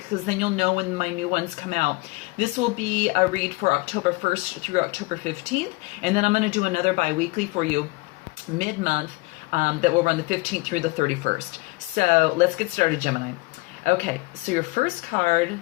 then you'll know when my new ones come out. This will be a read for October 1st through October 15th. And then I'm going to do another bi-weekly for you mid-month that will run the 15th through the 31st. So let's get started, Gemini. Okay, so your first card,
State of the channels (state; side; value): quieter; right; 23.9 dB